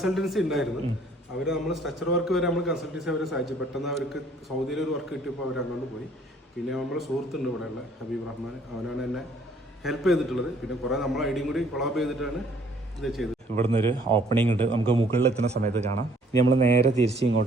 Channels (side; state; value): both; normal; correlation 0.60